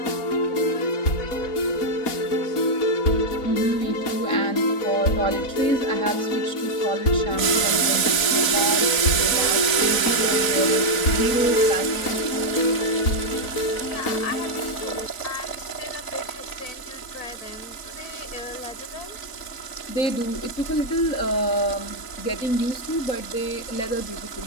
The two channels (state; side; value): late; right; 4.0 ms